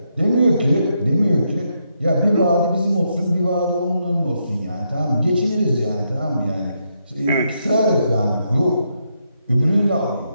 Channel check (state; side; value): inverted; both; correlation -0.80